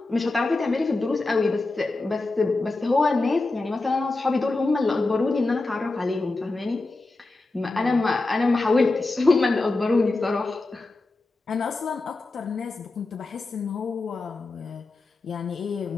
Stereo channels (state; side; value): quieter; right; 3.3 dB